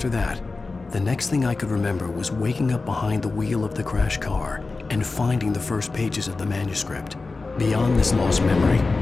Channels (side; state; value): right; quieter; 3.7 dB